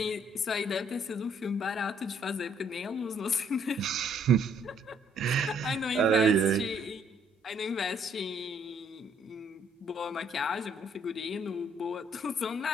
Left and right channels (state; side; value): normal; both; correlation 0.66